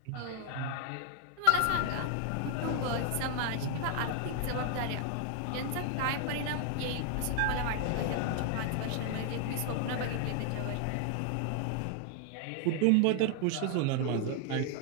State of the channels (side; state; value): both; different; correlation 0.00